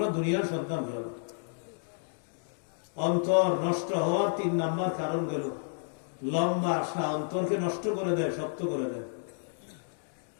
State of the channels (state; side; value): silent; right; digital silence